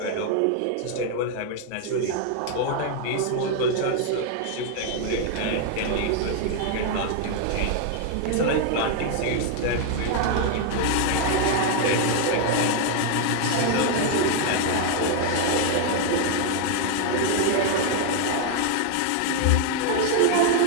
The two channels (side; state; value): both; different; correlation 0.00